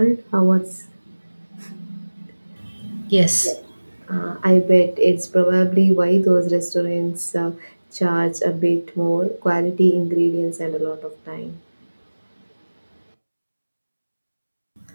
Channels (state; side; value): inverted; both; correlation -1.00